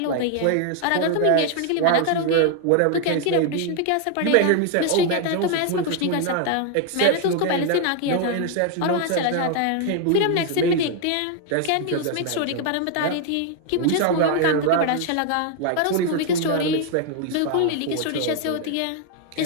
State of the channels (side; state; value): both; different; correlation 0.00